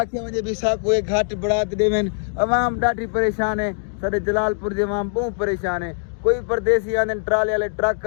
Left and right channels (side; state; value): right; silent; 64 dB below the other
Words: वजे भी साको एक घाट बढ़ात देवन अवाम ढाठी परेशान है सारे जलालपुर के अवाम बहुत परेशान है कोई परदेसी आने ट्राले वाले ट्रक